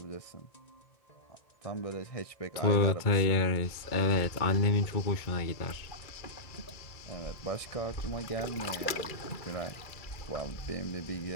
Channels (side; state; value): right; late; 2.3 ms